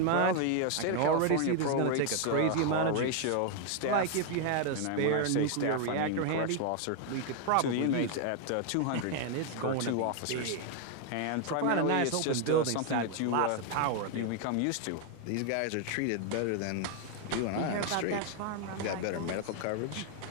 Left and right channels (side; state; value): both; different; correlation 0.00